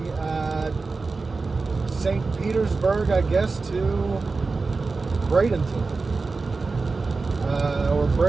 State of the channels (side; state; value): left; quieter; 4.0 dB